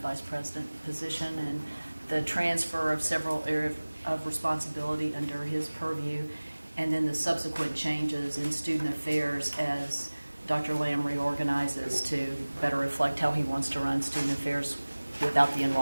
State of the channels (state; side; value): inverted; both; correlation -1.00